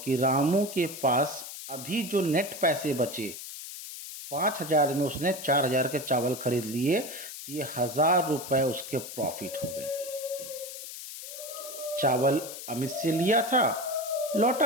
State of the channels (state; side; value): noise; left; hiss, 10 dB below the sound